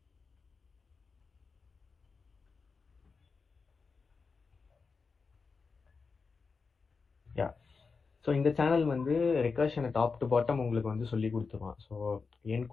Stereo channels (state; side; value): quieter; right; 4.8 dB